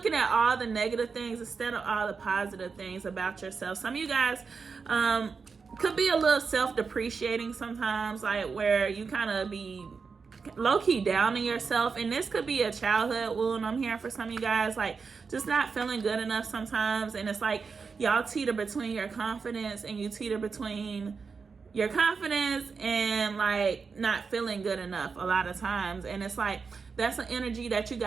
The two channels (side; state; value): left; quieter; 5.2 dB